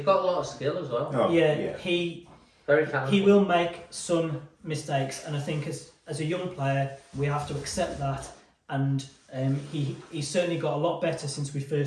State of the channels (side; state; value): both; identical; correlation 1.00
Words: got a lot of skill as well. He Very talented. He will make some mistakes, and I think as a young player, we have to accept that. And he's certainly got a lot better since we